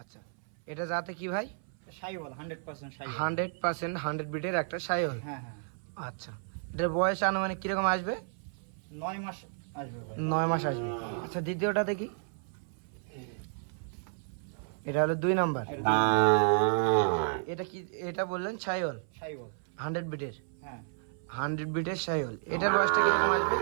আচ্ছা, এটা জাতে কি ভাই? শাইওয়াল 100% শাইওয়াল। 100% 100 বিটের একটা শাহিওয়াল। হ্যাঁ হ্যাঁ। আচ্ছা, এটার বয়স আনুমানিক কিরকম আসবে? 9 মাস আসবে ভাই। 9 মাস আসবে। আচ্ছা, দ্বিতীয়টা দেখি। এটা হলো 2 নাম্বার। এটা কি? এটা বললেন শাহিওয়াল শাইওয়াল 100 বিটের। হ্যাঁ। 100 বিটের শাহিওয়াল। এটার বয়সটা কিরকম আসবে?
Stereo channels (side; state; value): left; silent; 57 dB below the other